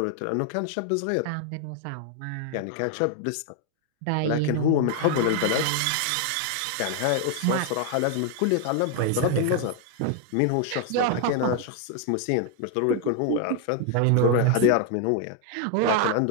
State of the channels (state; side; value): different; both; correlation 0.00